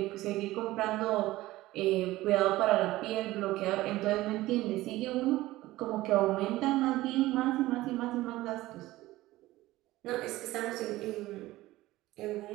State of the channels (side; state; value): left; quieter; 17.3 dB